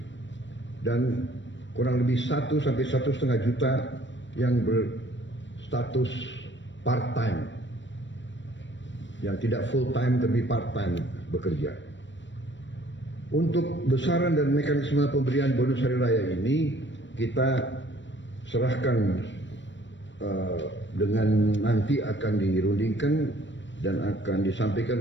dan kurang lebih 1 sampai 1,5 juta yang berstatus part-time, yang tidak full-time tapi part-time bekerja. Untuk besaran dan mekanisme pemberian bonus hari raya ini kita serahkan dengan nanti akan dirundingkan dan akan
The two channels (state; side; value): late; right; 0.54 ms